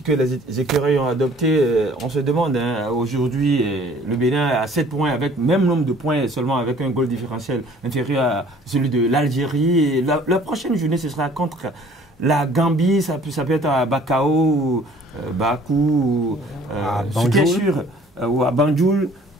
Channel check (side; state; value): both; normal; correlation 0.54